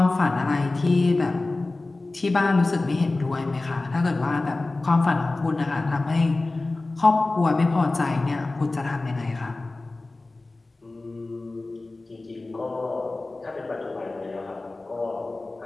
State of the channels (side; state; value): right; quieter; 3.1 dB